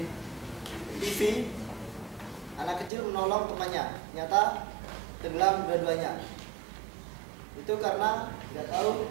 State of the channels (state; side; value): drops out; left; at 2.9 s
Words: TV, anak kecil menolong temannya, ternyata tenggelam dua-duanya. Itu karena nggak